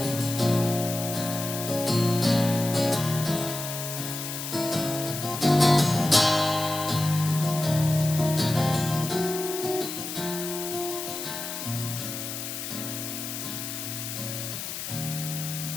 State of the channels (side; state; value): left; noise; hiss, 6 dB below the sound